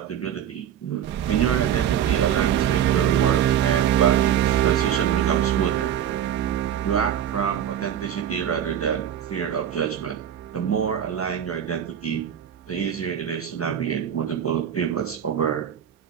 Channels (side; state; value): left; quieter; 9.7 dB